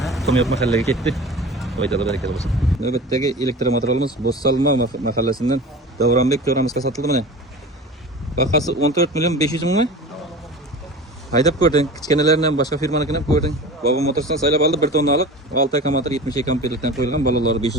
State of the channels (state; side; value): normal; both; correlation 0.35